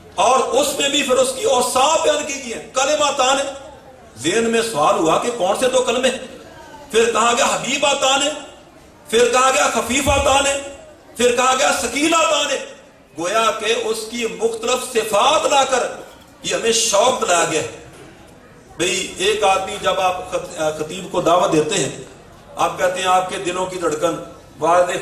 اور اس میں بھی پھر اس کی اوصاف بیان کی گئی ہے۔ کلمتان، ذہن میں سوال ہوا کہ کون سے 2 کلمے، پھر کہا گیا حبیبتان، پھر کہا گیا خفیفتان، پھر کہا گیا ثقیلتان، گویا کہ اس کی مختلف صفات لا کر یہ ہمیں شوق دلایا گیا۔ بھئی ایک آدمی جب آپ خطیب کو دعوت دیتے ہیں، آپ کہتے ہیں آپ کے دلوں کی دھڑکن والد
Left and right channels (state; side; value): identical; both; correlation 1.00